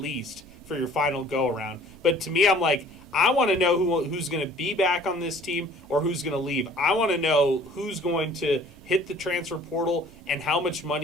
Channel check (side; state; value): right; noise; rumble, 25 dB below the sound